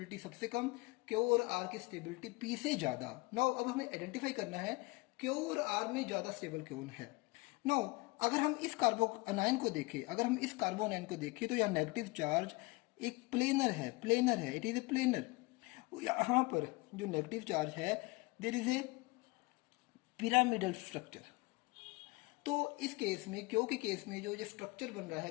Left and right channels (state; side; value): quieter; right; 24.7 dB